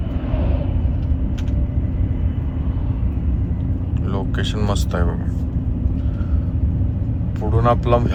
लोकेशन मस्त आहे बघा. पुढून आपला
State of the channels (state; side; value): identical; both; correlation 1.00